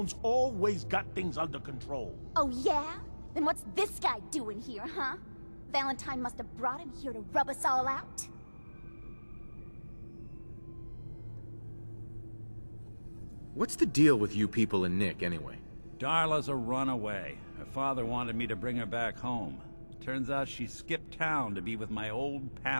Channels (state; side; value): inverted; both; correlation -1.00